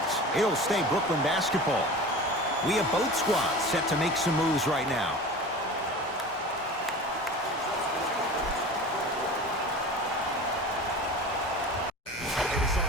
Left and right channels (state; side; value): normal; both; correlation 0.35